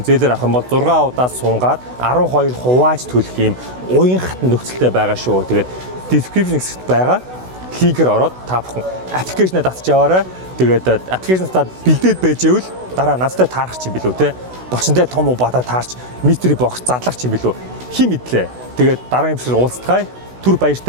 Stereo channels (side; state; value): left; late; 16 ms